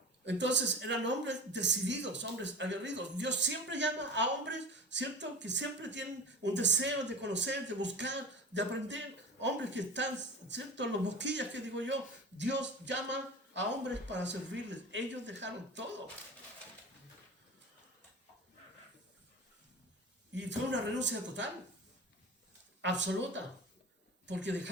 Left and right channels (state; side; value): normal; both; correlation 0.32